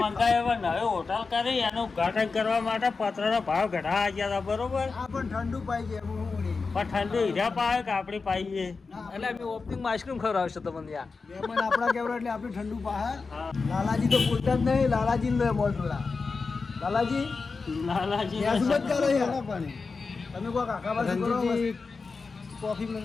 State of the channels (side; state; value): right; quieter; 4.4 dB